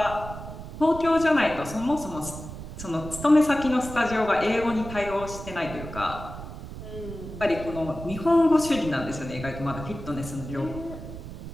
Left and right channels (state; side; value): noise; right; rumble, 11 dB below the sound